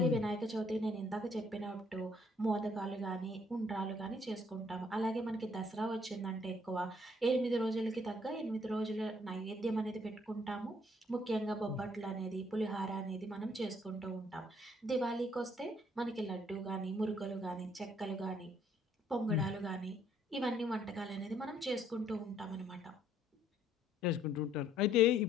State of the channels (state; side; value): normal; both; correlation 0.65